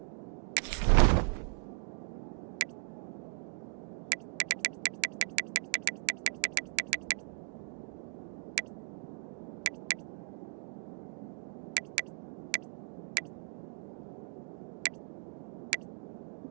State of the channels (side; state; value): left; silent; 53 dB below the other